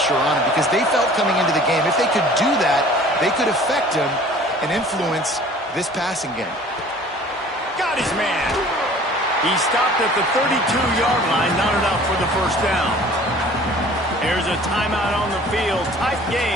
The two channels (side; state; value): both; normal; correlation 0.49